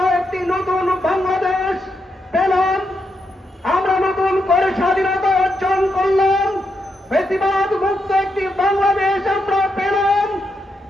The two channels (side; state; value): both; normal; correlation 0.82